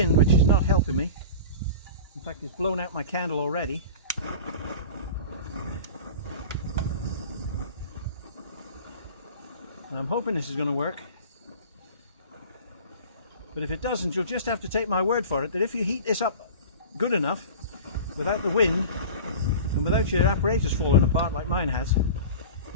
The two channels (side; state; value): both; inverted; correlation -0.35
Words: which is not helping me. In fact, it's blown out my candle already. And I'm hoping this is going to work. But if it doesn't, you'll just have to take my word for it that if you heat this up good enough, without the wind and without your apparatus falling apart like mine has,